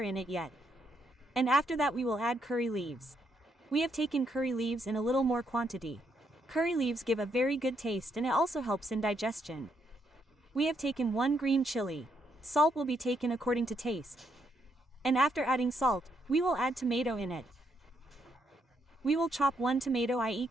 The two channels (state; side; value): normal; both; correlation 0.76